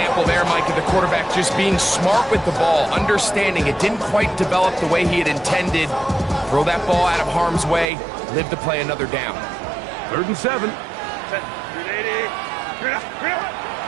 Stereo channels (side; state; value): left; drops out; at 7.9 s